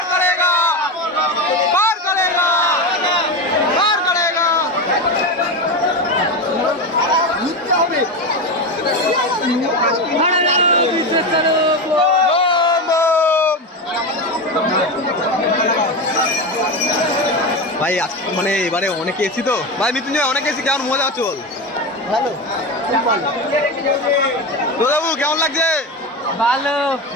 ভাই মানে এবারে অনেকে এসি তো ভাই, মৃত্যুঞ্জয় অনেকে এসি, কেমন মজা হচ্ছে বল? ভালো তো বাবু কেমন লাগছে? ভালো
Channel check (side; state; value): both; normal; correlation 0.19